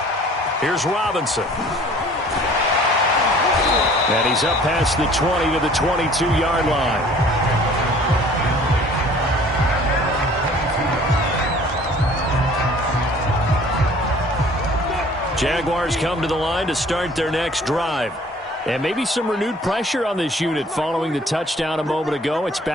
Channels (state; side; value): normal; both; correlation 0.52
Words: Here's Robinson. And he's up past the 20 to the 22-yard line. Jaguars come to the line to start their next drive. And maybe some renewed pressure on this unit following the touchdown a moment ago. It's